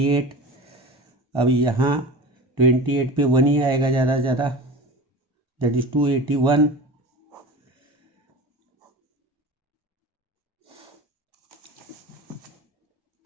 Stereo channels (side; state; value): both; normal; correlation 0.33